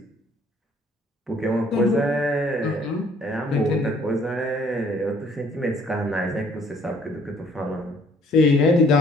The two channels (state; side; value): normal; both; correlation 0.60